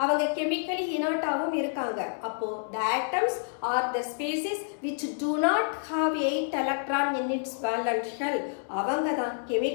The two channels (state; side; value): silent; right; 59 dB below the other